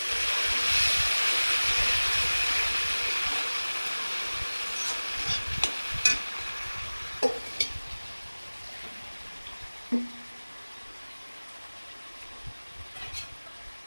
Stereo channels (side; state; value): both; inverted; correlation -1.00